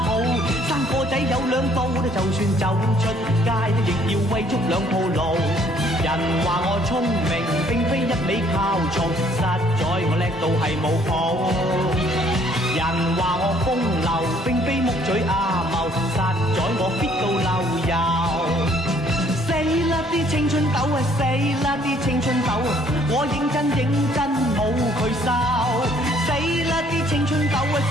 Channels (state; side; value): normal; both; correlation 0.62